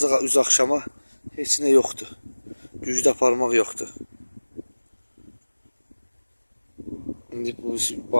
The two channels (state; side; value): inverted; both; correlation -1.00